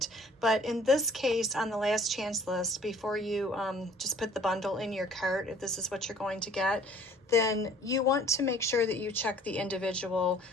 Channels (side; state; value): both; normal; correlation 0.54